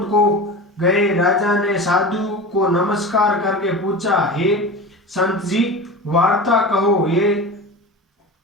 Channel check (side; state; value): both; normal; correlation 0.30